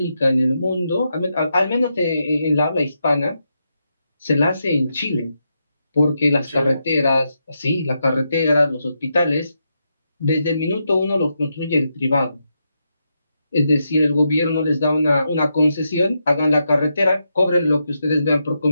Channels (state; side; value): inverted; both; correlation -0.84